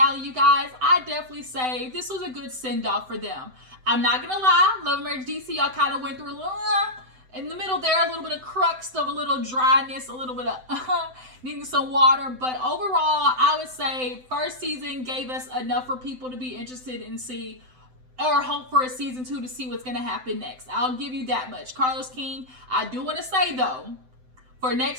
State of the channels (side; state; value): left; late; 7.8 ms